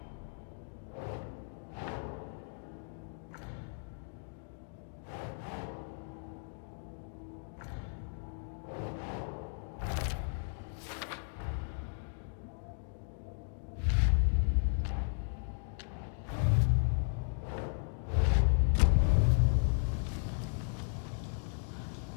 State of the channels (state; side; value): silent; right; digital silence